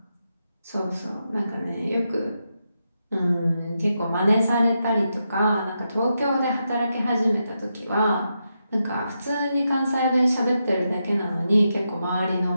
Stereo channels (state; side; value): inverted; both; correlation -0.85